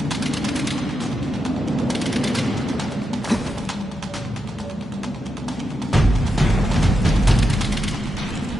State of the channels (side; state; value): both; normal; correlation 0.86